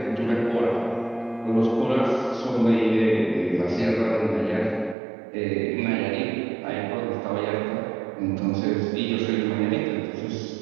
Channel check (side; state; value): left; drops out; at 5.0 s